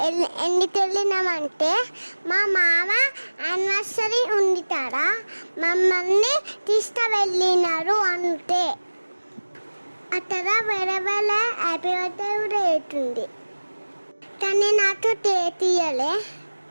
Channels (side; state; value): both; inverted; correlation -1.00